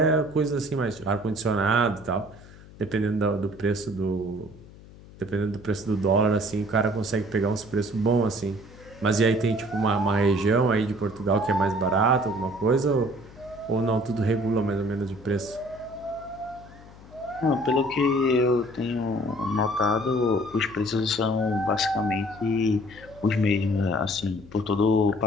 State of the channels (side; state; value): left; noise; hum, 20 dB below the sound